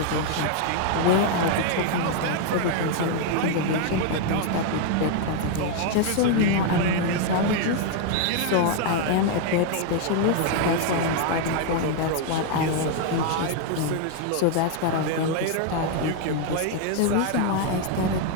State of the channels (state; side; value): different; both; correlation 0.00